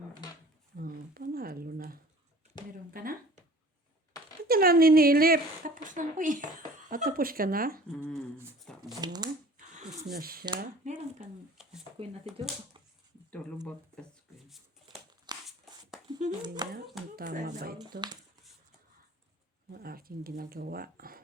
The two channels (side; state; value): both; normal; correlation 0.47